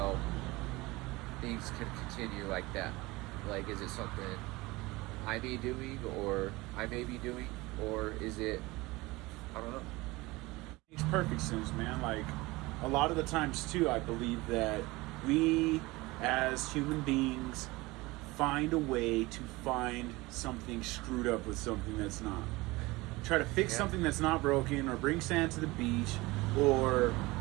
things can continue like that. Like, is it something I may be doing or is it, I don't know. makes perfect sense, man. Like, a lot of the times, too, I believe that we, as human beings, find a way to find something screwed up with something that's not. Try to fix something that's not broken, or bring sand to the beach, or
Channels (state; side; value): quieter; left; 21.6 dB